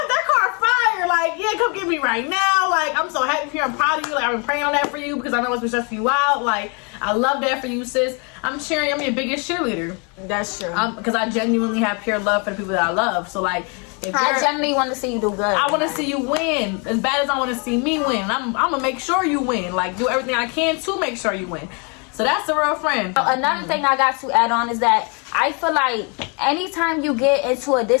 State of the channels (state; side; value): quieter; right; 34.4 dB